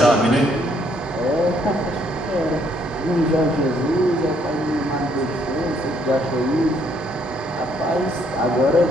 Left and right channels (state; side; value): normal; both; correlation 0.68